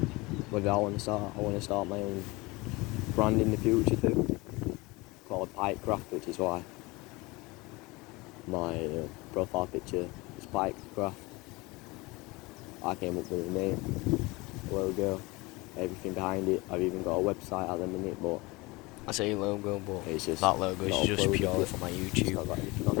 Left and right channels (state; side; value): quieter; right; 23.5 dB